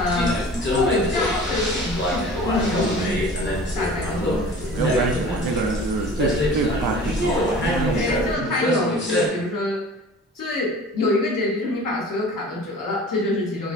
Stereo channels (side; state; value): both; normal; correlation 0.43